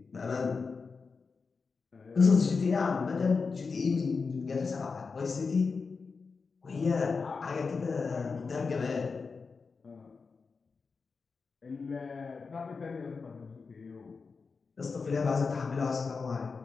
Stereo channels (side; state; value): right; quieter; 4.8 dB